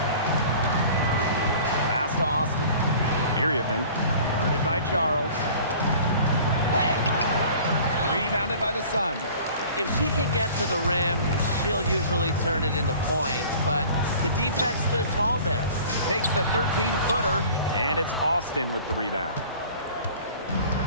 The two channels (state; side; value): inverted; both; correlation -0.46